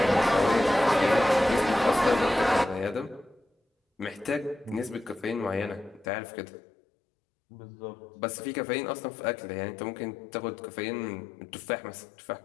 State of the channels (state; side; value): drops out; right; at 6.1 s